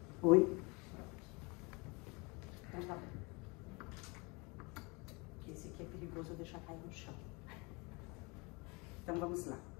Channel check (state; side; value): quieter; right; 28.1 dB